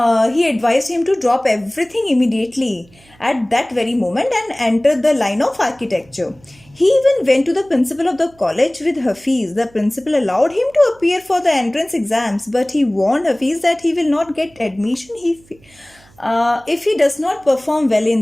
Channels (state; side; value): noise; right; hum, 29 dB below the sound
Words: he advised him to drop everything immediately at that very moment and enter the line of architecture. He even went to the principal of the college with Hafiz. The principal allowed him to appear for the entrance exams, but he warned Hafiz that he will not get admission if he does not perform well